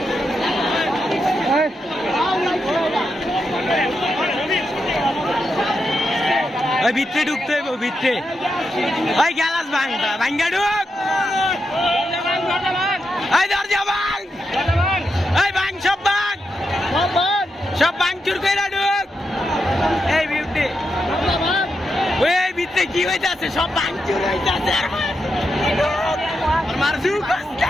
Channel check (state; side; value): normal; both; correlation 0.85